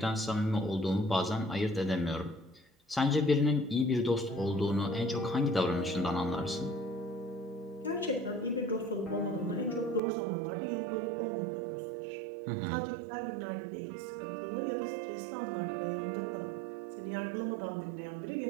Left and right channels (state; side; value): drops out; left; at 10.0 s